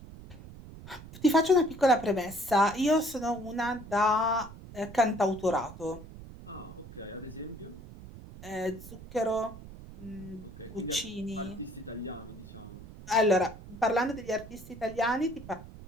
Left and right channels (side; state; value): right; noise; rumble, 15 dB below the sound